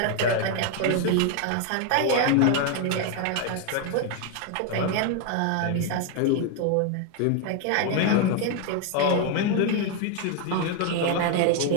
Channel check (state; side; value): different; both; correlation 0.01